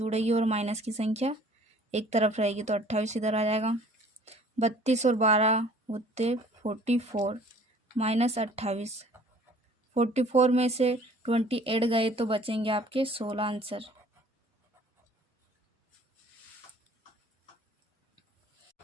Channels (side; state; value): both; normal; correlation 0.53